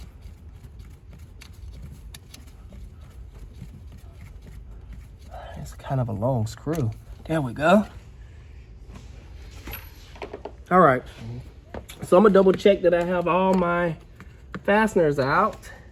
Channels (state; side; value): identical; both; correlation 1.00